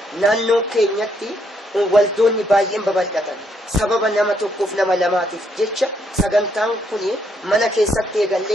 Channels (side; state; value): both; normal; correlation 0.74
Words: نانو كينيتي والدوني بايين ببلدتن سبب نما توقف نما لماتف جتشا سغنتان كوني منا كيساتي